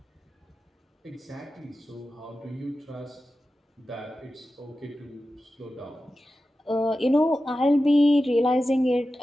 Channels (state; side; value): normal; both; correlation 0.93